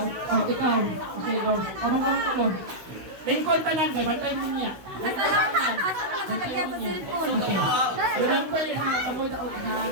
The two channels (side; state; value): left; late; 16 ms